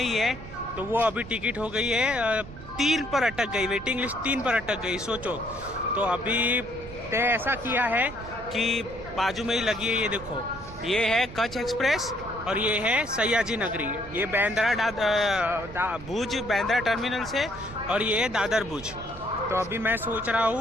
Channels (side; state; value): right; noise; rumble, 15 dB below the sound